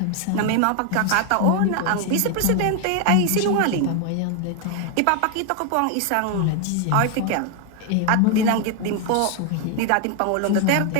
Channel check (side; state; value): both; different; correlation 0.01